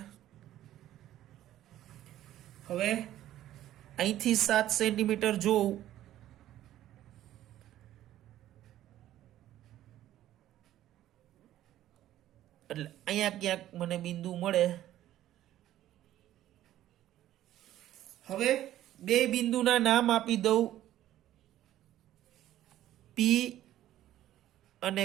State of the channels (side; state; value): left; quieter; 13.1 dB